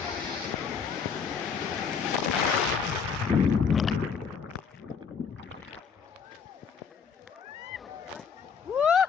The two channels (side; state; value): right; quieter; 6.3 dB